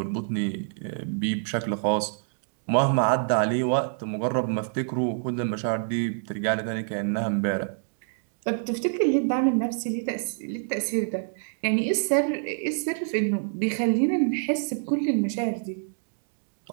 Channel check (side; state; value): left; silent; digital silence